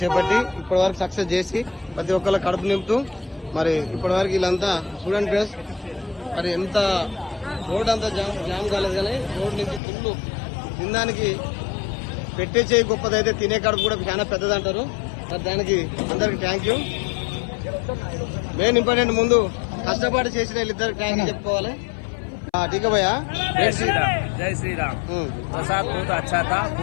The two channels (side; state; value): right; drops out; at 9.8 s